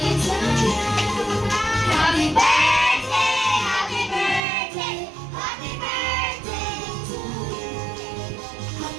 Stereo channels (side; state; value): left; drops out; at 4.4 s